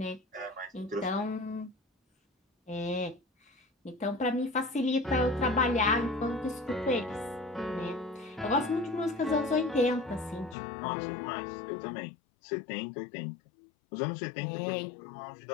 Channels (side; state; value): right; drops out; at 10.6 s